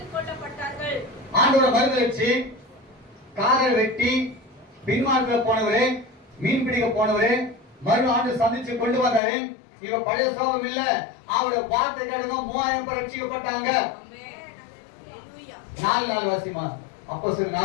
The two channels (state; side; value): drops out; right; at 9.2 s